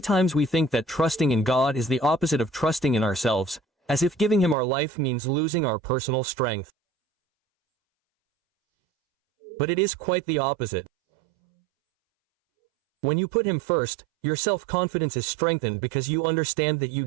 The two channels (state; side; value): drops out; left; at 4.5 s